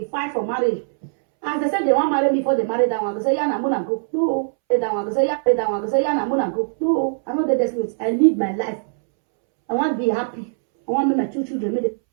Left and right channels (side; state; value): left; silent; 65 dB below the other